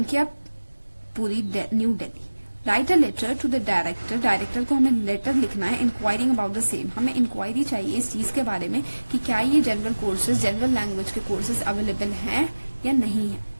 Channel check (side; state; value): both; inverted; correlation -1.00